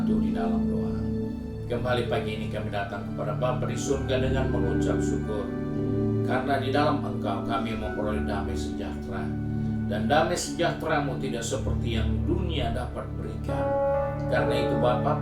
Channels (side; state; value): both; identical; correlation 1.00